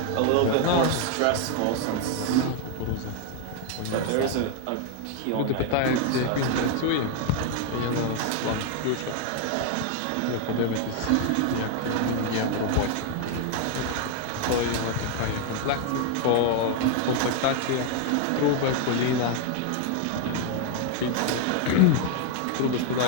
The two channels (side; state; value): both; different; correlation 0.00